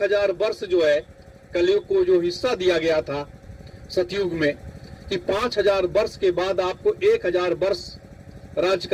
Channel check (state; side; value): identical; both; correlation 1.00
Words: वर्ष जो है कलयुग को जो हिस्सा दिया गया था सतयुग में कि 5000 वर्ष के बाद आपको 1000 वर्ष राज